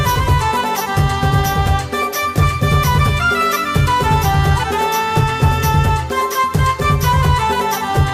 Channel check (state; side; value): identical; both; correlation 1.00